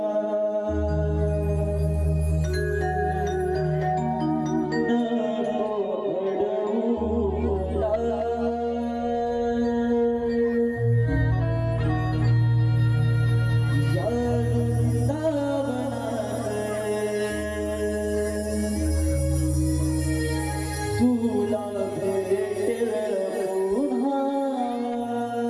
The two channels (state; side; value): identical; both; correlation 1.00